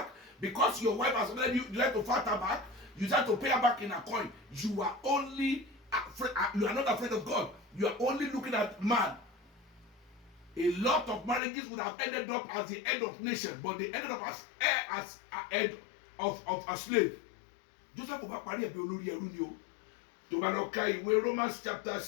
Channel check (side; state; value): right; drops out; at 11.4 s